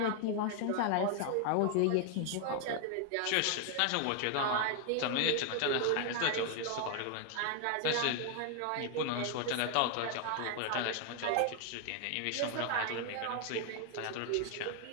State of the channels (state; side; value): different; both; correlation 0.00